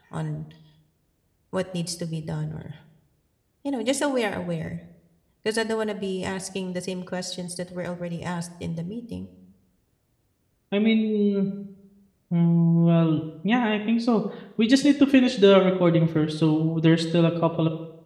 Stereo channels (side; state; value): both; identical; correlation 1.00